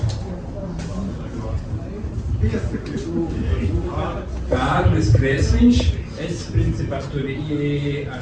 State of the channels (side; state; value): both; identical; correlation 1.00